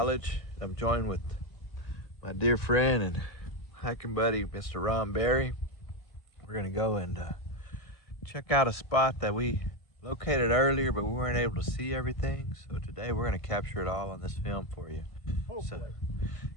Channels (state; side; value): late; right; 1.6 ms